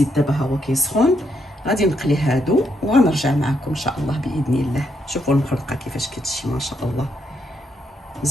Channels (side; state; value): both; normal; correlation 0.77